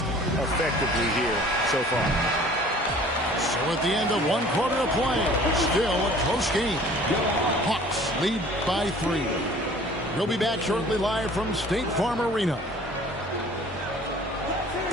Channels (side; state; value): both; normal; correlation 0.50